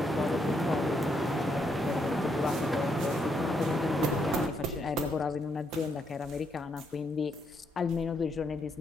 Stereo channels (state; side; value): normal; both; correlation 0.77